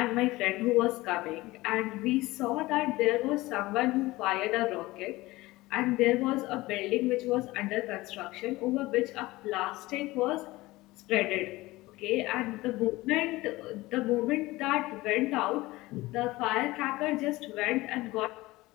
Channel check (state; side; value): quieter; right; 19.6 dB